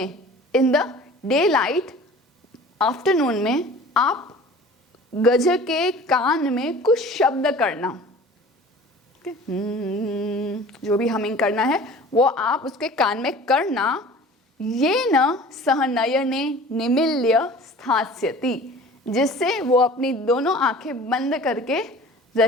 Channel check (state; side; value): normal; both; correlation 0.43